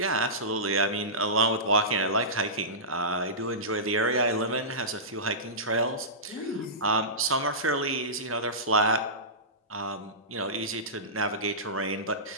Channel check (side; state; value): both; normal; correlation -0.20